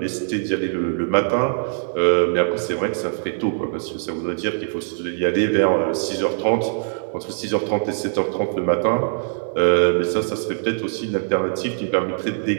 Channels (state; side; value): silent; left; digital silence